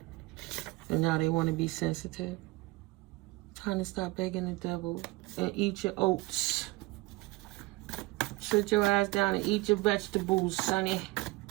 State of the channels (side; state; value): left; quieter; 21.9 dB